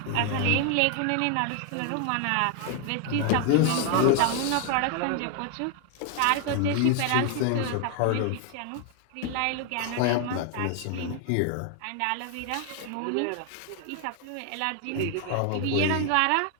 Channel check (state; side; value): different; both; correlation 0.00